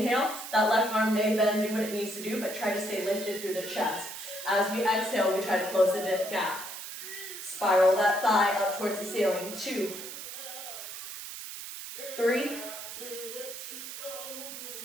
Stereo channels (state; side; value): noise; right; hiss, 9 dB below the sound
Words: That left arm may bend, do what it needs to do, but try to stay lifted through the chest. As we exhale, we try to close the gap. Spiral that thigh up towards the ceiling. 2, 3,